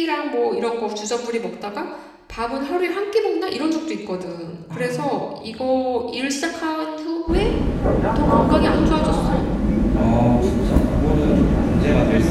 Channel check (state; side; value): identical; both; correlation 1.00